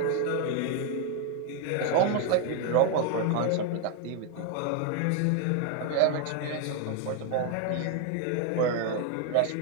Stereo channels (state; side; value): different; both; correlation 0.01